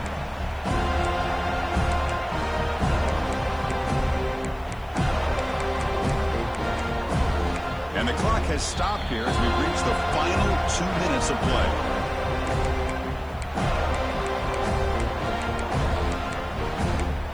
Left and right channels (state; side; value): noise; left; hiss, 30 dB below the sound